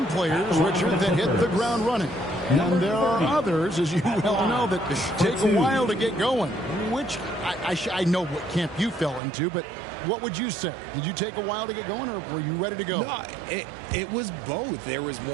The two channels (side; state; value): left; drops out; at 9.2 s